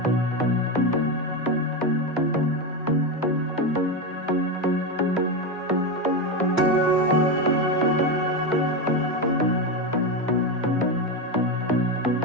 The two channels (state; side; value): normal; both; correlation 0.13